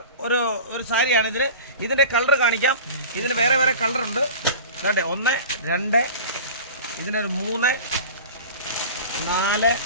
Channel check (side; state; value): both; inverted; correlation -0.36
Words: ഒരു സാരിയാണ് ഇതില്. ഇതിന്റെ കളർ കാണിക്കാം. ഇതിന് വേറെ കളർ ഉണ്ട്. ദാണ്ടെ 1 2 ഇതിനൊരു 3 4